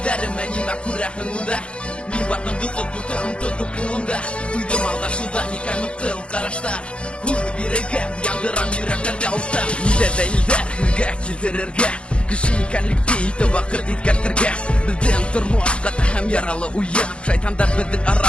нимә күрәхеңдә. Мин бардым дусып бутын тотып кулымда. Уйдым алдашуда никән мыткыл карашта. Йөрәгем яндырам йөрәктәрдә улта. Нидә дәлилдә хиргә килтерергә. Кеше икәнлекте ите вакыт иткәртергә. Бездән тормыш каты һәм яралы уен. Шайтандар безнең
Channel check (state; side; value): late; right; 0.058 ms